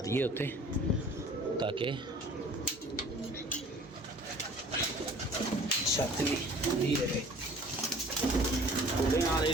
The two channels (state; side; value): normal; both; correlation 0.49